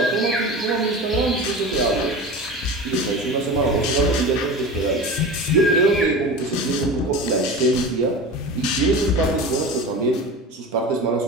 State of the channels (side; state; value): both; normal; correlation 0.31